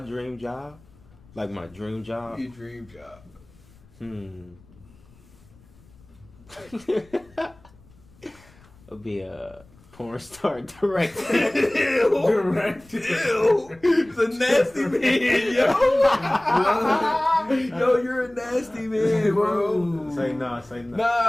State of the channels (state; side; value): noise; left; rumble, 27 dB below the sound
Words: job? Like my dream job? Your dream job. It'll be a porn star director. Director. It's a nasty man, yo. Yo, you're a nasty man, bro. Say no.